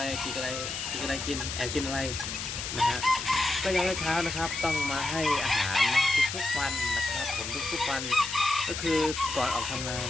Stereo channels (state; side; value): noise; left; hiss, 5 dB below the sound